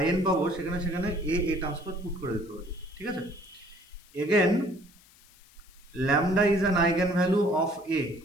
IN পাবো সেখানে সেখানে A transpose পুট করে দিতে পারি, ঠিক আছে। Again lambda is an eigenvalue of A,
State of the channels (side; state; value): left; noise; hiss, 27 dB below the sound